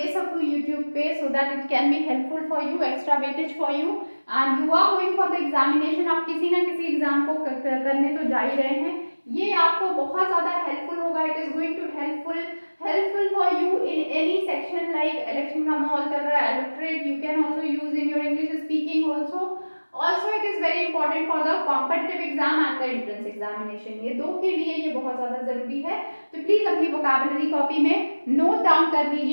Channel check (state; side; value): inverted; both; correlation -1.00